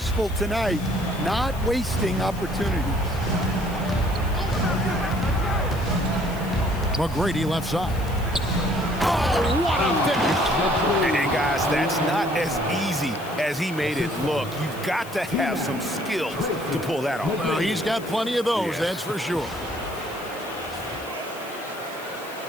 tonight, not wasting opportunities. McGrady left side. Oh, what a finish. And guys, that's not as easy as he made it look. You've got to have some skills to pull that off. Well, he's got plenty of those, that's for sure.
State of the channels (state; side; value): noise; left; hiss, 18 dB below the sound